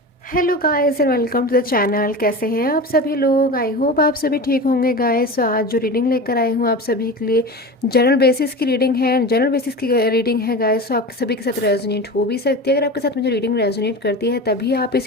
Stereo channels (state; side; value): normal; both; correlation 0.29